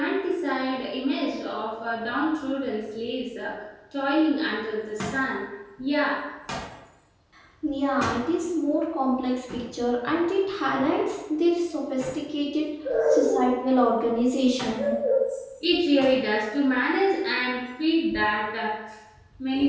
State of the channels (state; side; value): identical; both; correlation 1.00